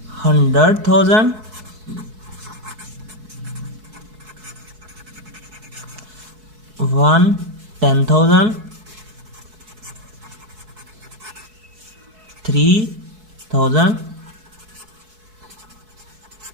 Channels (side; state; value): left; late; 4.6 ms